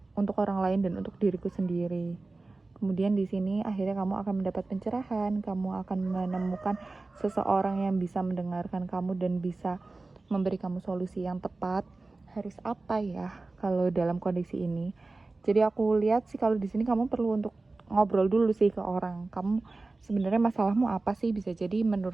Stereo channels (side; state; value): left; quieter; 3.4 dB